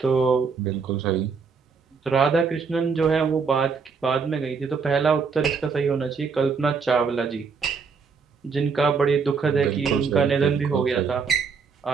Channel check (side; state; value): left; quieter; 5.4 dB